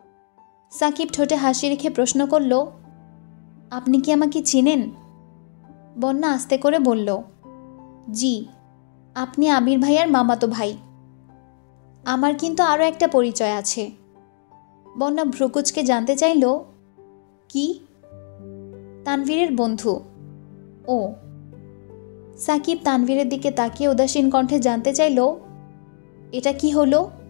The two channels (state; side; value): silent; right; digital silence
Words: সাকিব ঠোঁটে হাসি রেখে প্রশ্ন করল, আপনি কি আমাকে চিনেন? বন্যা আস্তে করে বলল, জি, আপনি আবির ভাইয়ার মামাতো ভাই। আমার কিন্তু আরও একটা পরিচয় আছে। বন্যা ভ্রুকুচকে জানতে চাইল, কি? তানভীরের বন্ধু। ও। সাকিব তানভীরের দিকে তাকিয়ে উদাসীন কণ্ঠে জানতে চাইল, এটা কি হলো?